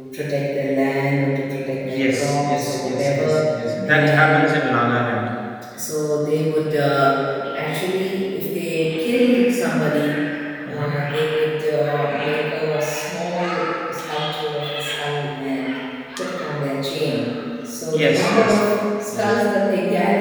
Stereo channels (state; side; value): identical; both; correlation 1.00